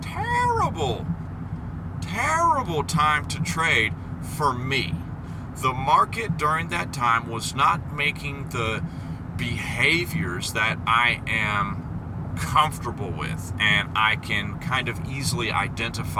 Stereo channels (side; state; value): both; identical; correlation 1.00